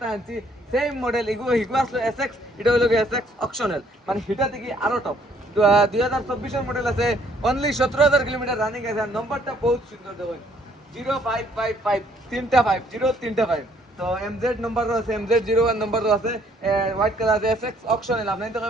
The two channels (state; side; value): normal; both; correlation 0.64